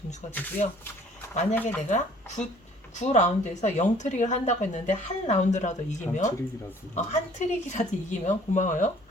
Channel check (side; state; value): both; normal; correlation 0.55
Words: 점수가 되고요. 만약에 내가 9라운드에서 0트릭을 한다고 했는데 한 라운드라도 이기면 한 트릭이라도 이기면 고마워요.